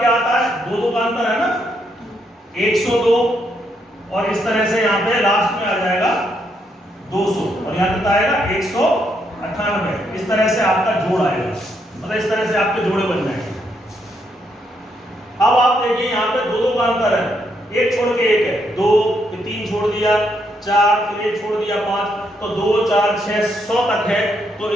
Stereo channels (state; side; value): normal; both; correlation 0.76